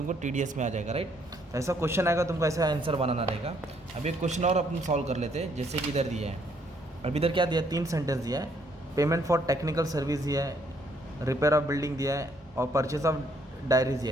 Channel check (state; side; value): normal; both; correlation 0.68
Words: टीडीएस में आ जाएगा, राइट। तो ऐसा क्वेश्चन आएगा, तुमको ऐसा आंसर बनाना रहेगा। अब एक क्वेश्चन और अपन सॉल्व कर लेते हैं, जैसे कि इधर दिया है। अब इधर क्या दिया है, 3 सेंटेंस दिया है। पेमेंट फॉर टेक्निकल सर्विस दिया है, रिपेयर ऑफ बिल्डिंग दिया है, और परचेस ऑफ डायरीज